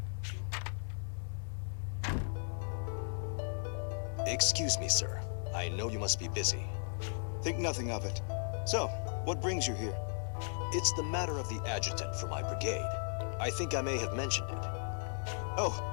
Excuse me, sir. I know you must be busy. Think nothing of it. So, what brings you here? It's the matter of the adjutant for my brigade. I think I may have mentioned it. Oh,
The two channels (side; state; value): right; silent; 54 dB below the other